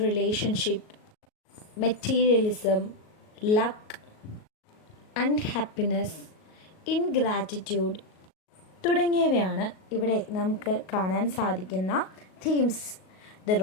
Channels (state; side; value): late; right; 38 ms